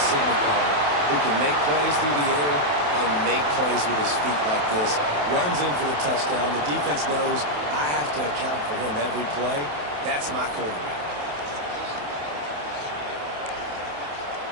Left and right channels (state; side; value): late; left; 27 ms